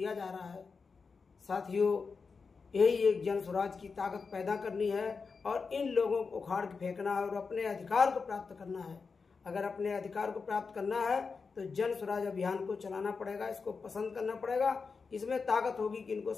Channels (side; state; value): right; quieter; 4.9 dB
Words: जा रहा है। साथियों, यही एक जन स्वराज की ताकत पैदा करनी है और इन लोगों को उखाड़ के फेंकना है और अपने अधिकार को प्राप्त करना है। अगर अपने अधिकार को प्राप्त करना है तो जन स्वराज अभियान को चलाना पड़ेगा, इसको पसंद करना पड़ेगा। इसमें ताकत होगी कि इनको